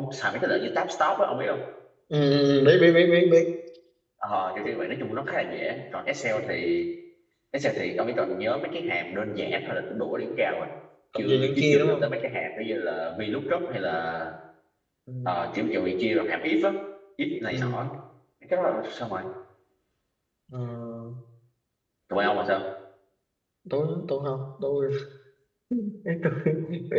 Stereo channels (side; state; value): both; identical; correlation 1.00